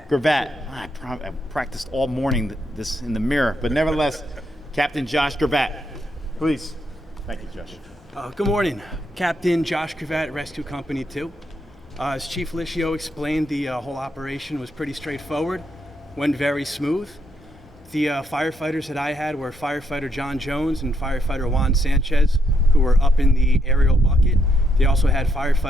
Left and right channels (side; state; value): both; normal; correlation 0.77